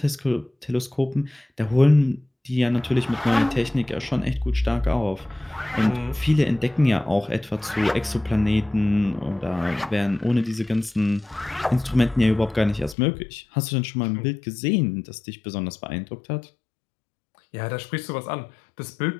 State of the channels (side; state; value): right; drops out; at 13.0 s